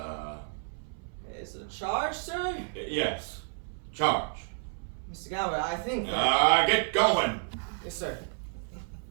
Is it a charge, sir? Yes. Charge. Mr. Gower, I think that... Get going! Yes, sir.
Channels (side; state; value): left; silent; 57 dB below the other